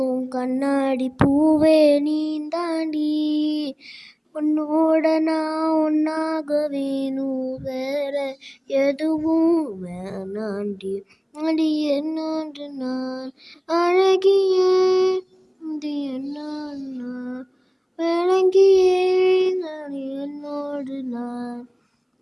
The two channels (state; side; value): identical; both; correlation 1.00